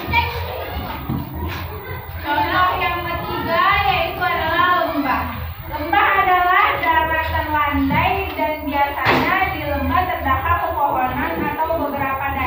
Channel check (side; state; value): right; noise; hum, 27 dB below the sound